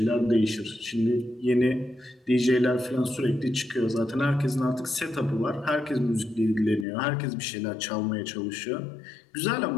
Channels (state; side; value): drops out; right; at 6.9 s